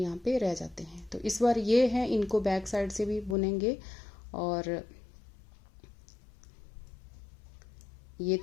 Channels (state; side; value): drops out; right; at 3.4 s